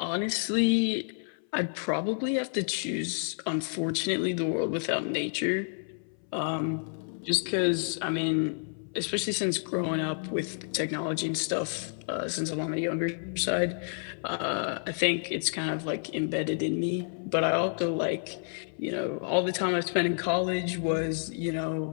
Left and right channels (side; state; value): right; silent; 58 dB below the other